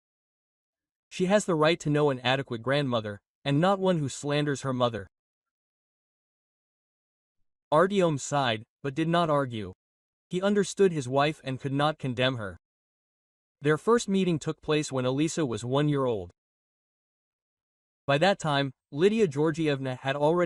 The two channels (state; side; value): identical; both; correlation 1.00